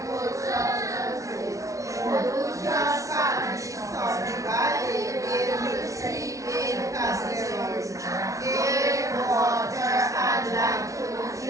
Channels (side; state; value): left; late; 0.16 ms